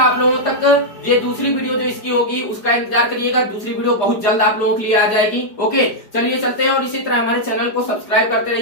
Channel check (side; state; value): right; late; 4.9 ms